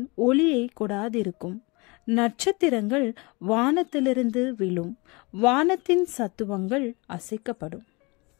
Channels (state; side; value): quieter; right; 27.2 dB